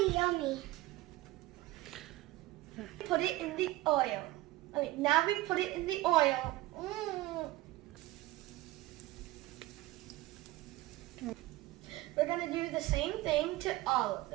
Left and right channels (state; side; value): quieter; left; 17.8 dB